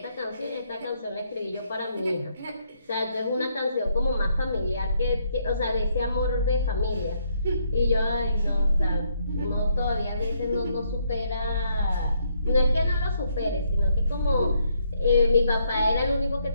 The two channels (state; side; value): inverted; both; correlation -0.72